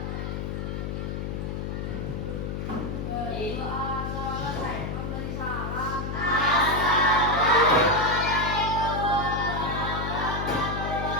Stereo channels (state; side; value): noise; left; hum, 4 dB below the sound